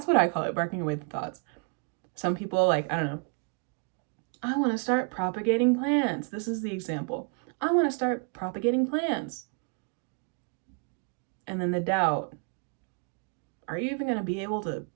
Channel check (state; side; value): quieter; left; 37.6 dB